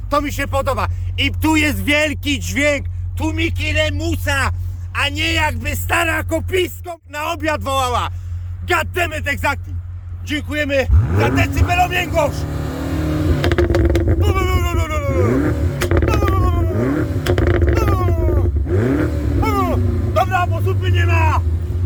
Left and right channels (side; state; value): both; identical; correlation 1.00